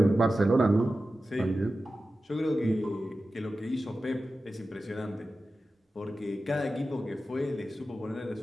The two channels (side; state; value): both; normal; correlation 0.94